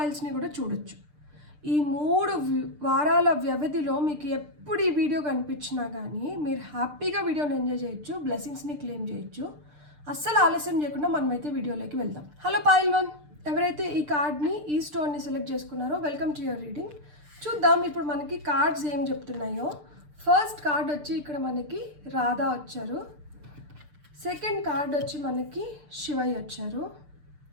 కూడా చూడొచ్చు. ఈ 3 వారాల వ్యవధిలో మీకు ఎప్పుడు ఈ వీడియో కనిపించినా కానీ మీరు హ్యాపీగా వీడియోని ఎంజాయ్ చేయొచ్చు, బ్లెస్సింగ్స్ని క్లెయిమ్ చేయొచ్చు. అస్సలు ఆలస్యం చేయకుండా మనమైతే వీడియోలోకి వెళ్దాం. హలో పాయిల్ 1, ఎవరైతే ఈ కార్డ్ని, ఈ స్టోన్ని సెలెక్ట్ చేసుకున్నారో వెల్కమ్ టు యువర్ రీడింగ్. చూద్దాం ఇప్పుడు మనకి కార్డ్స్ ఏం చెప్తున్నాయో. ఫస్ట్ కార్డ్ వచ్చి ఇక్కడ మనకి రాధా వచ్చారు. సెకండ్ కార్డ్ వచ్చి మనకి శివయ్య వచ్చారు.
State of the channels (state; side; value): late; left; 6.7 ms